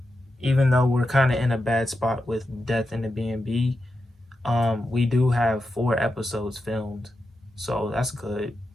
even though we're kind of in a bad spot with Death in the B&B, we do have 4 episodes filmed, so that's good.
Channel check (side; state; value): both; normal; correlation 0.88